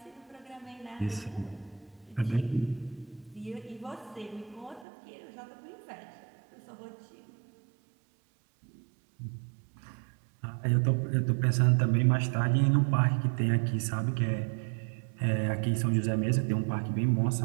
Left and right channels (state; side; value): drops out; left; at 4.9 s